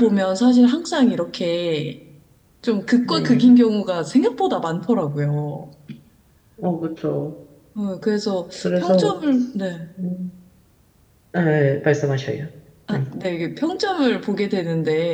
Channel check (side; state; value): both; identical; correlation 1.00